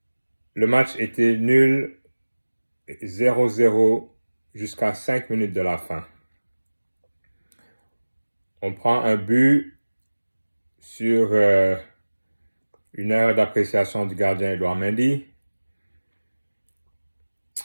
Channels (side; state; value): both; inverted; correlation -1.00